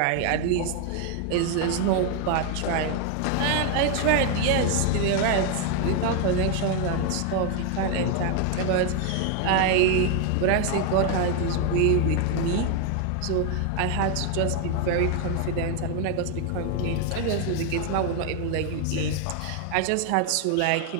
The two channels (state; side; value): different; both; correlation 0.01